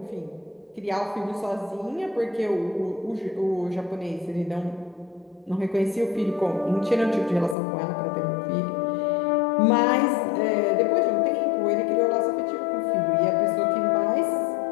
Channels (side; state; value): right; drops out; at 7.6 s